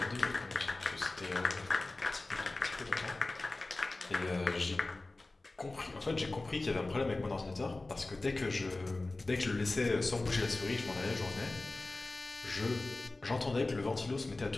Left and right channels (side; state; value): right; quieter; 3.1 dB